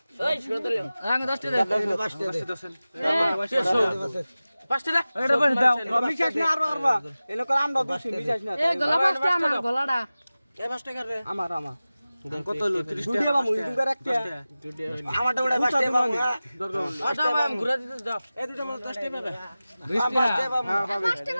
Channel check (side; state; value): both; inverted; correlation -0.97